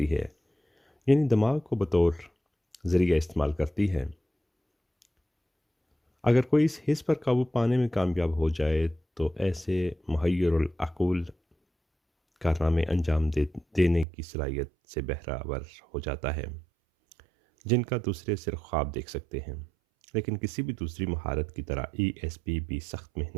है, यानी दिमाग को बतौर ज़रिया इस्तेमाल करती है। अगर कोई इस हिस्स पर काबू पाने में कामयाब हो जाए तो ऐसे मुहय्यरुल अक़ूल कारनामे देने की सलाहियत से बहरावर हो जाता है, जिनका दूसरे सिर्फ ख्वाब देख सकते हैं। लेकिन किसी भी दूसरी महारत की तरह ईएसपी भी सख्त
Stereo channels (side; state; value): left; drops out; at 14.1 s